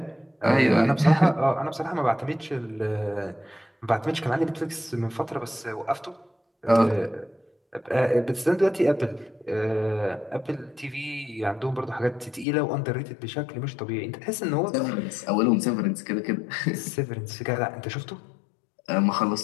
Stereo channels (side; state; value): right; drops out; at 12.5 s